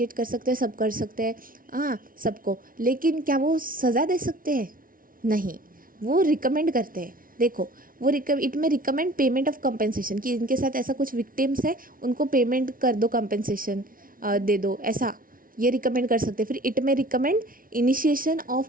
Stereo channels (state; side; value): late; left; 0.41 ms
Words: कर सकते हैं, सब कर सकते हैं, हाँ सबको, लेकिन क्या वो सज़ा दे सकते हैं? नहीं, वो रिकमेंड करते हैं। देखो वो इट में रिकमेंड पेमेंट ऑफ कंपेंसेशन, कि इनके साथ ऐसा कुछ विक्टिम्स है उनको पेमेंट कर दो, कंपेंसेशन दे दो, ऐसा ये रिकमेंड कर सकते हैं। फिर इट में recommend initiation of